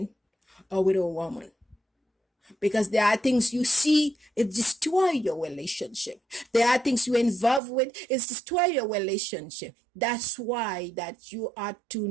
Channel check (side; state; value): left; drops out; at 7.6 s